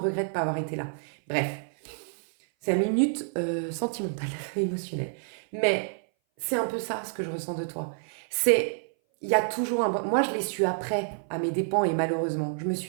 de ne pas avoir été là. Bref, c'est une minute sentimentale, émotionnelle. Mais c'est un peu ça ce que je ressens de toi. C'est, il y a toujours un... Moi, je l'ai su après, à mes dépens, et malheureusement. Je me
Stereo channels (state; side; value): silent; left; 58 dB below the other